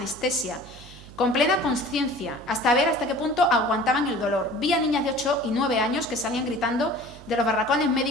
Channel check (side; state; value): right; noise; hum, 19 dB below the sound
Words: con plena conciencia, hasta ver hasta qué punto aguantaban el dolor. Vi a niñas de 8 y 9 años que salían gritando de los barracones